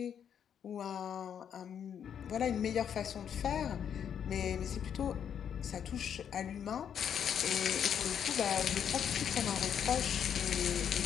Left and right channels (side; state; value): right; quieter; 8.4 dB